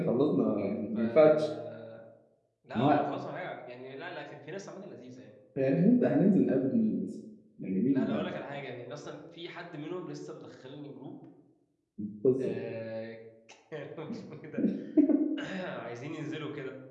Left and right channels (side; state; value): both; identical; correlation 1.00